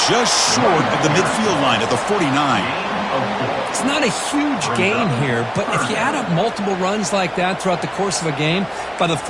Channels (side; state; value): both; identical; correlation 1.00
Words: just short of the midfield line at the 49. It's not a huge gain here, but if you add up multiple runs like that throughout the course of a game, by the